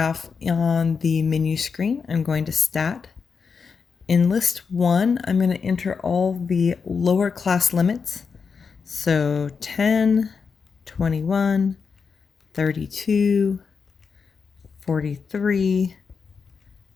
on the menu screen. I'm going to stat. In list 1, I'm going to enter all the lower class limits. So 10, 21, 32, 43,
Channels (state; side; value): quieter; right; 5.6 dB